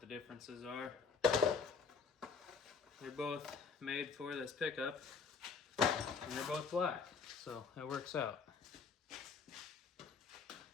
the differences are. They're both made for this pickup, and they're both black, so it works out.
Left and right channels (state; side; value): quieter; right; 5.3 dB